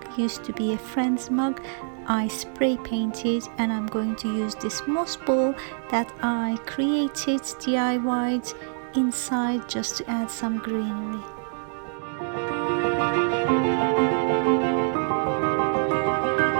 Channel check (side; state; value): left; silent; digital silence